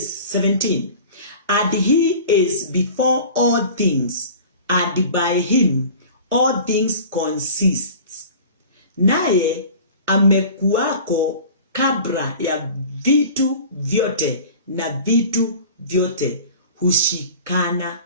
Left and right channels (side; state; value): both; inverted; correlation -0.40